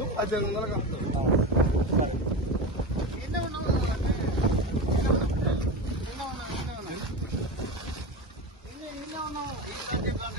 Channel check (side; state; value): both; normal; correlation 0.23